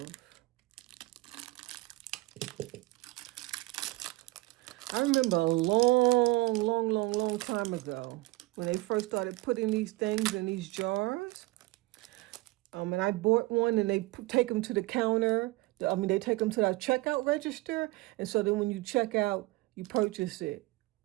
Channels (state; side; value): quieter; left; 21.6 dB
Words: I remember a long time ago when they first started putting these things in these jars. And I bought one, and they take them to the counter. They take them to the checkout register, and so then when you check out, you purchase it.